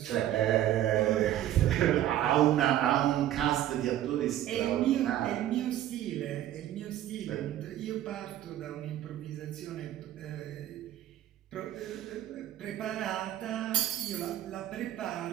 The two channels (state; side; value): quieter; left; 12.5 dB